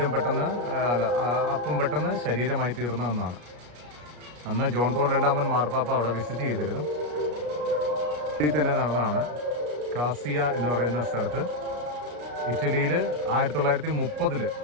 അപ്പം പെട്ടെന്ന് ശരീരമായി തീർന്നതെന്നാണ്. അന്ന് ജോൺ പോൾ രണ്ടാമൻ മാർപ്പാപ്പ അവിടെ വിസിറ്റ് ചെയ്തിരുന്നു. ഇതിൽ തന്നെ നടന്നതാണ്. കാസിയ എന്ന് പറയുന്ന സ്ഥലത്ത് ഇറ്റലിയിൽ 1930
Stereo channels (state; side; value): late; left; 33 ms